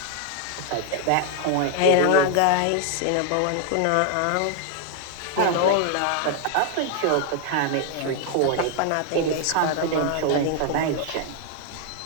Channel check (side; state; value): both; different; correlation 0.00